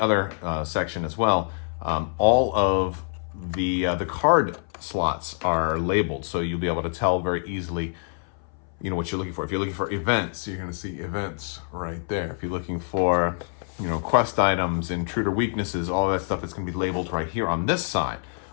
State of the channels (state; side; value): silent; right; 59 dB below the other